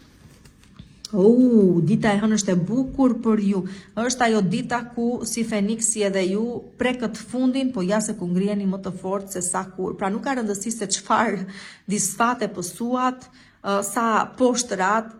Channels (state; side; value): identical; both; correlation 1.00